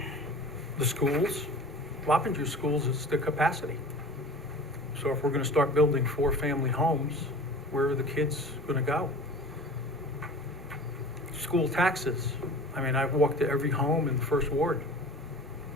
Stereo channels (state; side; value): normal; both; correlation 0.39